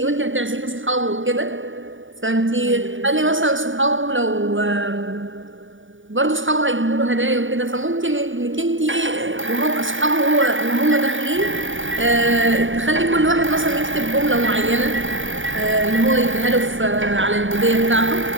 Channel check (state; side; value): late; left; 0.57 ms